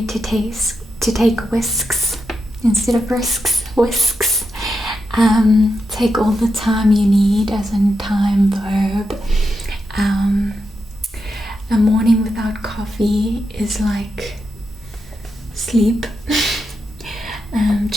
to take whisks instead of whisks. Take all the time you need, as in time verb. A morning without coffee is like sleep.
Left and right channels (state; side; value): normal; both; correlation 0.86